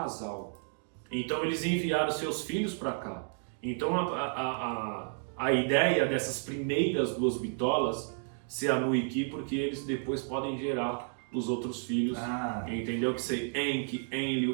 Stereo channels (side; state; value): left; silent; 56 dB below the other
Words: Então eles enviaram seus filhos para cá. Então a ideia dessas primeiras 2 bitolas ser a Nuiki, porque eles depois podem gerar os outros filhos, entendeu? Que ser Enki,